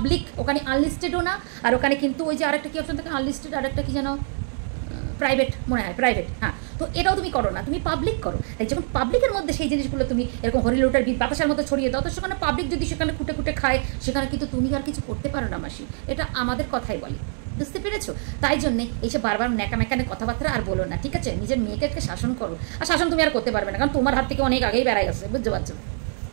ওখানে আনলিস্টেডও না, আর ওখানে কিন্তু ওই যে আরেকটা কি অপশন থাকে আনলিস্টেড, আরেকটা কি যেন প্রাইভেট মনে হয়, প্রাইভেট, হ্যাঁ। তো এটাও তুমি করো না, তুমি পাবলিক করো। তাই যখন পাবলিকের মধ্যে সেই জিনিসগুলো তুমি এরকম হরিলোটার বাতাসার মতো ছড়িয়ে দাও, তো সেখানে পাবলিক যদি সেখানে কুটে খায়, সেখানে কিন্তু তুমি আর কিছু করতে পারো না মাসি। এটা আমাদের কথাই বলি, বুঝতে পেরেছো? তাই জন্যে এইসব বারবার ন্যাকামেকানে কথাবার্তা আর বলো না, ঠিক আছে? নিজের মেয়েকে শাসন করো, আর শাসন তুমি আর করতে পারবে না, কারণ তোমার হাত থেকে অনেক আগেই বেড়াই গেছে, বুঝতে পারছো?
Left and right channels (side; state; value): left; silent; 58 dB below the other